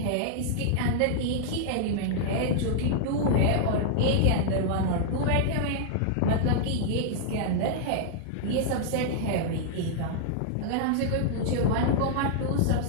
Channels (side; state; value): both; different; correlation -0.01